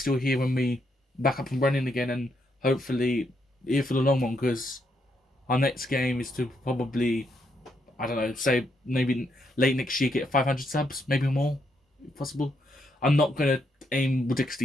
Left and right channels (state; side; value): normal; both; correlation 0.77